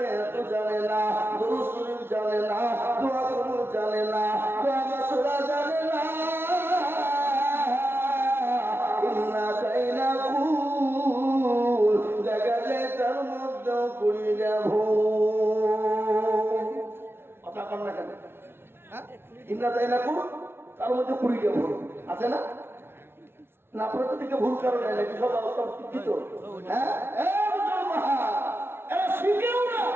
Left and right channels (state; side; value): late; left; 0.11 ms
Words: এত জানে না, দুরূদ শরীফ জানে না, দোয়া কবুল জানে না, দোয়া মাসুরা জানে না। ইন্না কাইনা কুল দেখা যায় তার মধ্যে 20টা ভুল। কথা কর না কেন? ইন্না কাইনা কুল তার মধ্যে 20টা ভুল আছে না? না আপনার তো দিকে ভুল কারণে নাকি সব অবস্থা শিক্ষিত? হ্যাঁ, এরা শিখেও না,